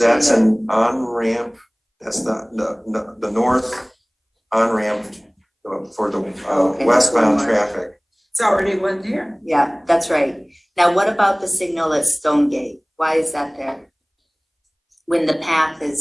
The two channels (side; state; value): both; identical; correlation 1.00